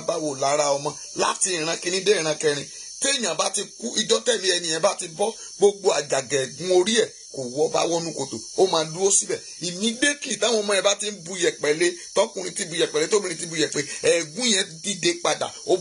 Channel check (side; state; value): both; identical; correlation 1.00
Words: wò lára ọmọ láti ìran kìíní dé ìran kẹrin. Téèyàn bá ti kú, ìjọ́ tẹ̀lé ẹni yẹn bá ti bọ́, gbogbo àjàgà ẹ̀gún orí ẹ̀ kò wọ́ bá wọnú kòtò, ó máa dúró síbẹ̀. Immediately táwọn ọmọ ẹ̀ bá ti ń bu yẹ̀pẹ̀ lé, tọkùnrin ti bu yẹ̀pẹ̀ lé, tóbìnrin ti bu yẹ̀pẹ̀, ẹ̀gún yẹn dìde padà, ó